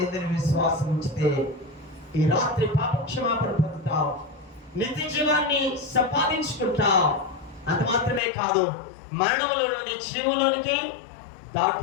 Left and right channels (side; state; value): right; drops out; at 8.2 s